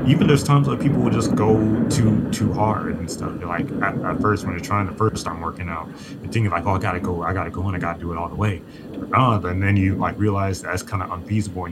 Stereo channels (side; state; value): both; identical; correlation 1.00